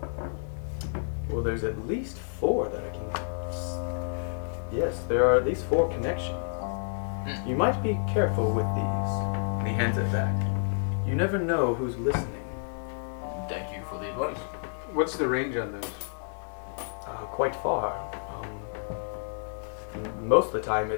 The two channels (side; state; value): right; silent; digital silence